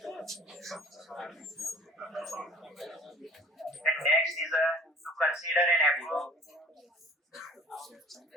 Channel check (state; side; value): normal; both; correlation 0.49